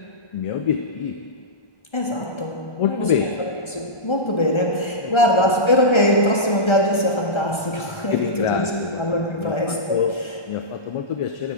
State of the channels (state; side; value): late; right; 1.3 ms